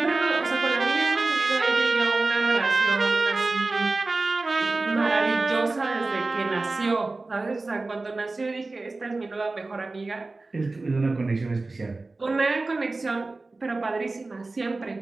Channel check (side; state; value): left; quieter; 3.4 dB